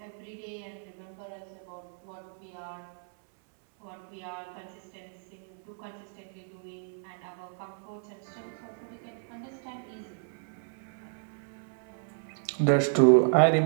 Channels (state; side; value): silent; left; 57 dB below the other